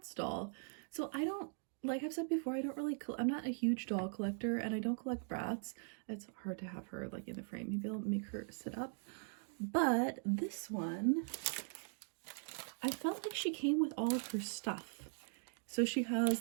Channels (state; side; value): silent; left; 51 dB below the other